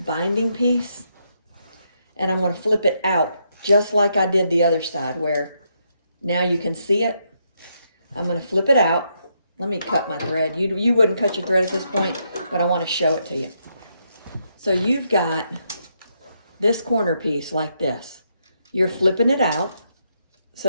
piece and I'm going to flip it out just like I did the other side, where now you can see it. I'm going to flip it out. Let me cut my thread. You wouldn't cut your thread at this point, but I want to show it to you. So you've got this corner piece like this. You're flipping it out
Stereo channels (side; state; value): both; inverted; correlation -0.78